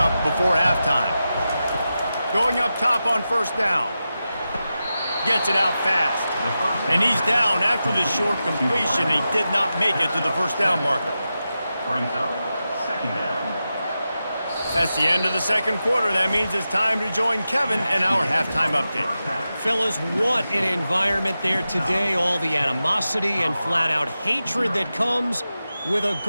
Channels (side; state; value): both; inverted; correlation -0.91